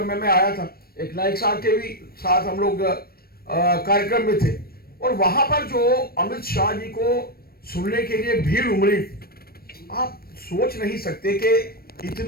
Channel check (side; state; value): right; late; 0.44 ms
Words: में मैं आया था, एक नाइक साहब के भी साथ हम लोग कार्यक्रम में थे, और वहां पर जो अमित शाह जी को सुनने के लिए भीड़ उमड़ी, आप सोच नहीं सकते कि